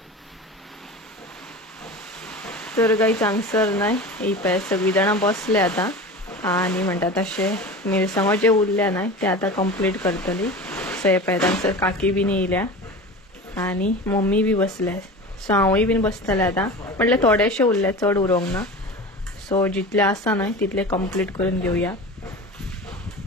तर काही चांगसर नाही ही पळय सगळी जाणां बसले आता आणि म्हणटा तशें मिरसांगो जे उरल्या नाही ते आता कंप्लीट करतली. सो हे पळय तांगसर काकी बीन येयल्या आणि मम्मी बी बसल्या. सो हांवूय बीन बसतलें आता. म्हटल्यार थोडेशे उरले, चड उरोंक ना. सो जितले आसा न्हय तितले कंप्लीट करून घेवया.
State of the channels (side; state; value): both; normal; correlation 0.32